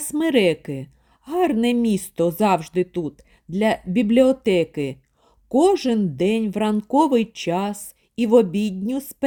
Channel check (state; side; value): identical; both; correlation 1.00